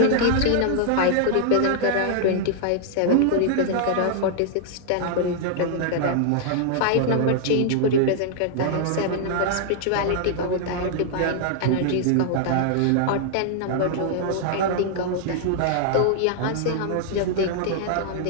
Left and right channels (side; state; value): both; different; correlation 0.00